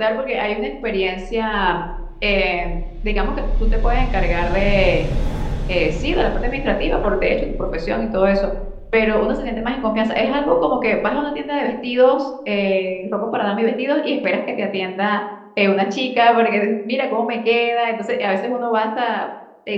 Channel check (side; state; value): both; identical; correlation 1.00